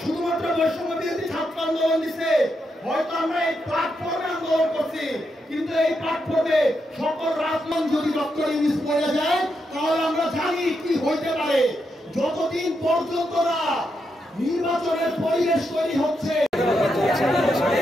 শুধুমাত্র বৈষম্য বিরোধী ছাত্র আন্দোলন দিছে? হয়তো আমরা এই প্ল্যাটফর্মে আন্দোলন করছি, কিন্তু এই প্ল্যাটফর্মে সকল রাজনৈতিক যদি ডক্টর ইউনূস পড়ে যায়, তাহলে আমরা জানি কি হইতে পারে। যতদিন পর্যন্ত না নির্বাচনের পরিবেশ তৈরি হচ্ছে,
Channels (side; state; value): both; normal; correlation 0.83